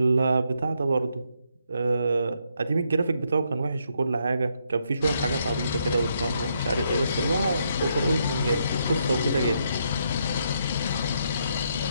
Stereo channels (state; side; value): inverted; both; correlation -0.76